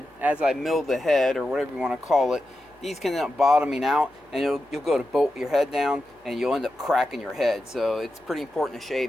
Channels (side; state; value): both; normal; correlation 0.90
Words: as I mill the head or whatever you want to call it, these can end up bottoming out, and you'll go to bolt your head down and you'll end up cracking your head. So it's pretty important to